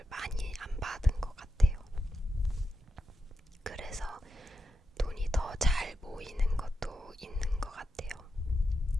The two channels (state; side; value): normal; both; correlation 0.88